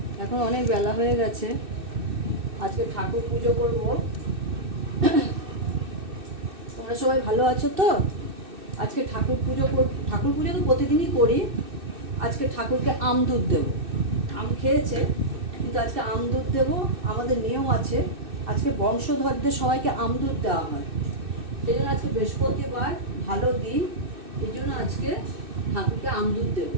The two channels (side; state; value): left; late; 2.6 ms